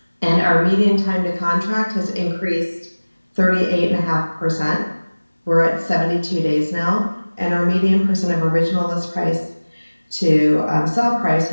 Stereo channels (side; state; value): both; inverted; correlation -1.00